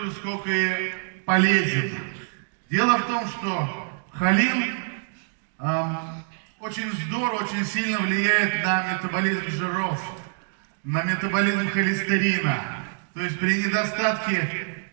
же, сколько и полезен. Дело в том, что холин очень здорово, очень сильно влияет на метаболизм жиров, на метаболизм холестерина. То есть при недостатке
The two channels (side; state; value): left; silent; 61 dB below the other